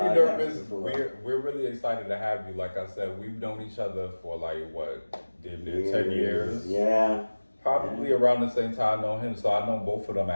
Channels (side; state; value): both; inverted; correlation -1.00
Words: podcast nervous. before. We're really excited to have you. Like I said, we've known each other for like what, 10 years? Yeah. Probably around the same time I know him. So I know both of them